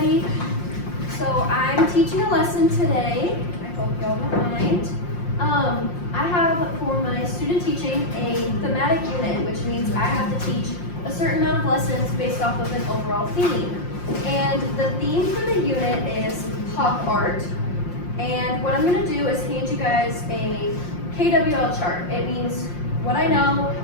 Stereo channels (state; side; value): late; right; 5.7 ms